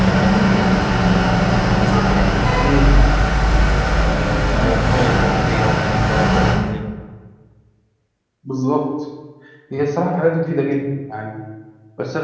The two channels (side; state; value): both; identical; correlation 1.00